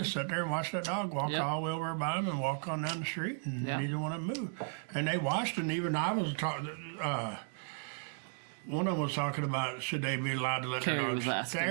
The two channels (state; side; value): silent; left; 55 dB below the other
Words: sat there and watched that dog walk all the way over by them and walk on down the street, and neither one of them moved. And they watched, and even I was talking. One of them was talking about should they be allowed to let their Carrie dogs was asking